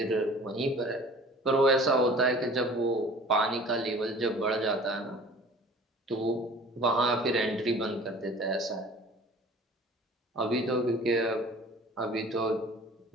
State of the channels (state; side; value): normal; both; correlation 0.46